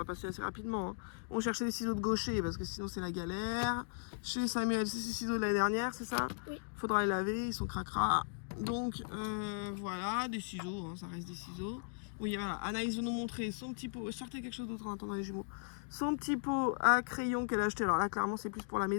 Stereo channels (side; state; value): right; silent; digital silence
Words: passer assez rapidement. Hein. On cherchait des ciseaux de gaucher parce que sinon c'est la galère. Chez Samuel, c'est ces ciseaux de l'année dernière, c'est ça? Oui. Faudra les laver, ils sont cracra. Donc voilà, des ciseaux, hein, ça reste des ciseaux. Oui, voilà, Anaïs veut nous montrer son petit pot. Sortez quelque chose d'autre en attendant les jumeaux. Son petit pot à crayon qu'elle a acheté. Alors là, clairement, c'est plus pour la